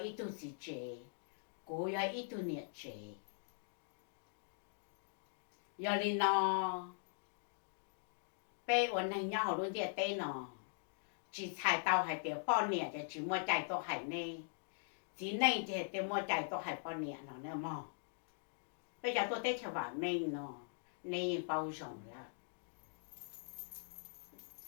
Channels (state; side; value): silent; right; digital silence